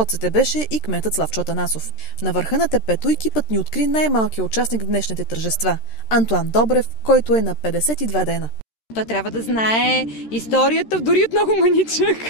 беше и кметът Славчо Атанасов. На върха на тепето екипът ни откри най-малкият участник в днешните тържества – Антоан Добрев, който е на 52 дена. Той трябва да знае историята, дори от много маничък.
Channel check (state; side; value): late; right; 13 ms